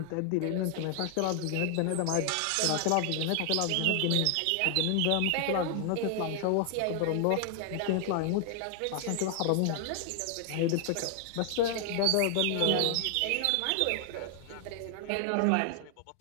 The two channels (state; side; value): different; both; correlation 0.00